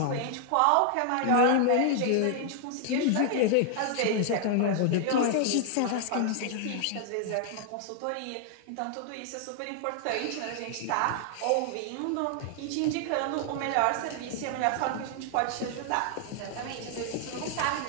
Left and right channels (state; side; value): different; both; correlation 0.00